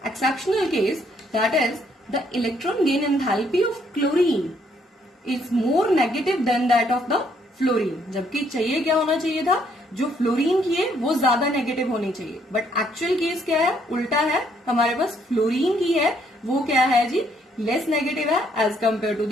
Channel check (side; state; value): both; normal; correlation 0.69